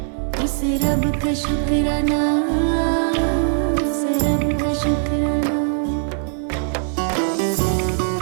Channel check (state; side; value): silent; left; digital silence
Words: उस रब का शुक्राना, उस रब का शुक्राना।